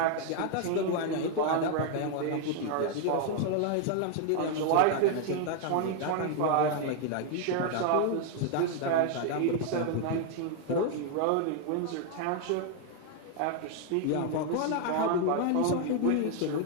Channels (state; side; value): different; both; correlation 0.00